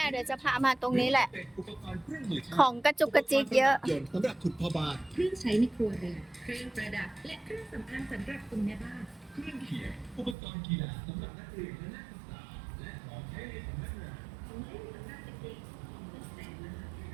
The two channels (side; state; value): left; drops out; at 10.4 s